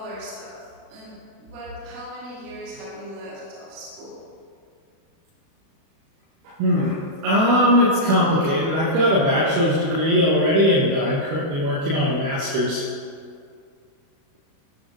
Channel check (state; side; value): late; left; 36 ms